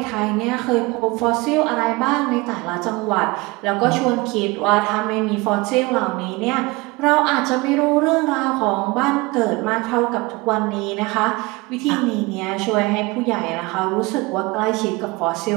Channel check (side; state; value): left; quieter; 23.8 dB